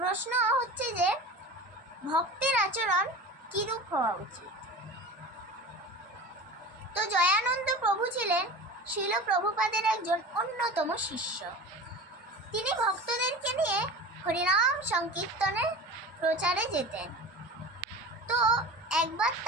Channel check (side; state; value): both; normal; correlation 0.34